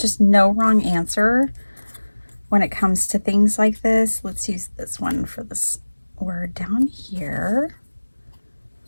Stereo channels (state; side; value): inverted; both; correlation -1.00